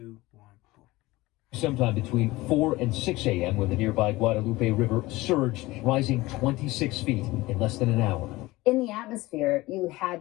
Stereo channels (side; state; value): right; quieter; 19.7 dB